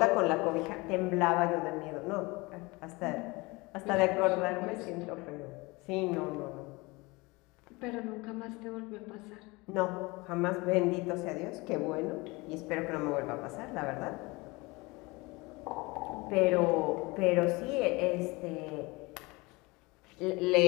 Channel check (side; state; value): right; quieter; 24.2 dB